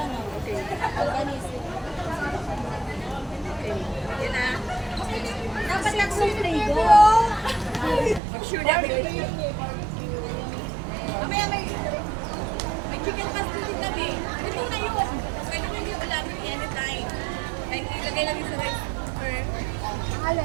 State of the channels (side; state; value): left; drops out; at 8.2 s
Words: Okay. Organize. Okay. Yan na. Dapat lang sa flavor. I'm sure that will. Mamaya may chicken pastel din kami. Ito na yun. Pwede mo yung ulamin anytime. Kahit ilagay lang yung sa rice cooker. Alin?